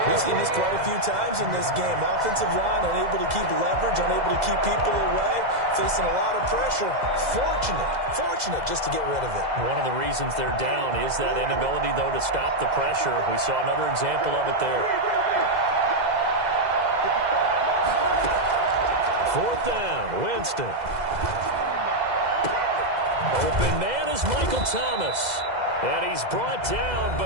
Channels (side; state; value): left; late; 2.0 ms